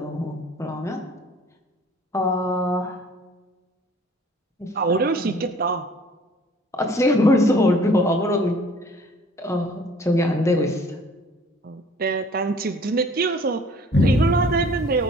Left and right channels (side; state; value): both; normal; correlation 0.52